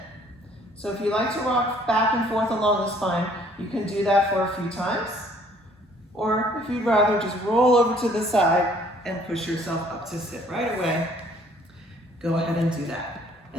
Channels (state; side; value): normal; both; correlation 0.60